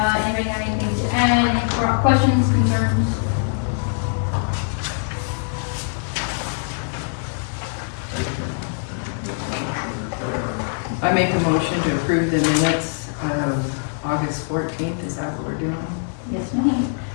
have anything to add, any questions, concerns? make a motion to approve the minutes of August 14th. Is that what we're doing? Yes, ma'am.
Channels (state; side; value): silent; right; digital silence